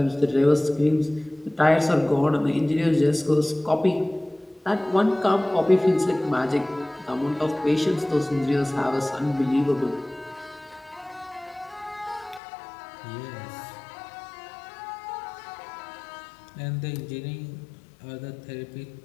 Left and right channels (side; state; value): right; drops out; at 12.4 s